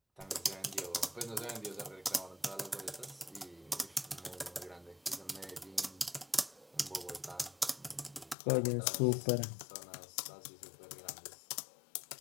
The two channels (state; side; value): drops out; right; at 8.3 s